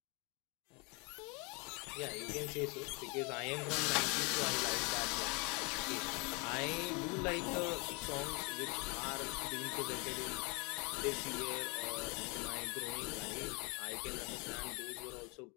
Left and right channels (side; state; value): right; quieter; 30.4 dB